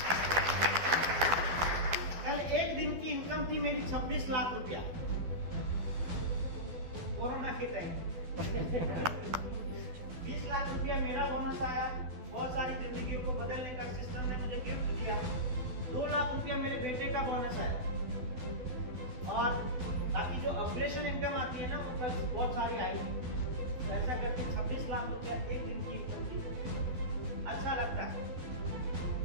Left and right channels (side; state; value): left; late; 12 ms